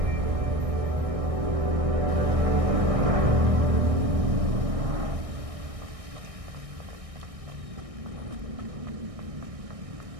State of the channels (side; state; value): left; late; 1.6 ms